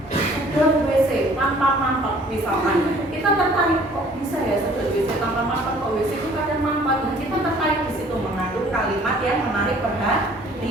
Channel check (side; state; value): both; normal; correlation 0.55